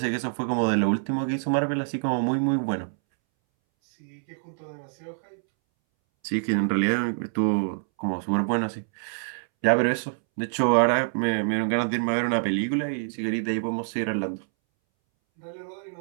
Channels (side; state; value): left; silent; 61 dB below the other